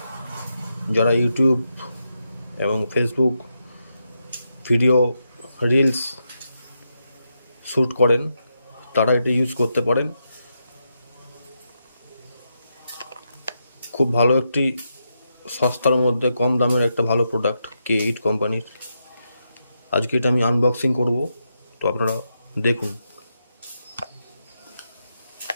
যারা ইউটিউব এবং ফেসবুক ভিডিও রিলস শ্যুট করেন তারা এটি ইউজ করতে পারেন। খুব ভালো একটি সস্তার মধ্যে কম দামের একটা ভালো প্রোডাক্ট K8 কোম্পানির। আজকে এটা আমি আনবক্সিং করব, তো আপনারা দেখুন।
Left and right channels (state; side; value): inverted; both; correlation -0.84